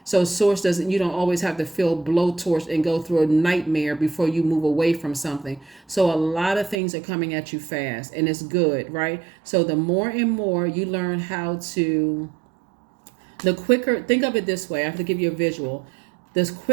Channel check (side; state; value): left; drops out; at 6.8 s